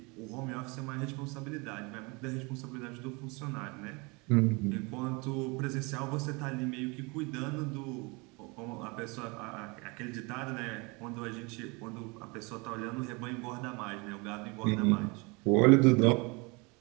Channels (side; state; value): left; quieter; 28.1 dB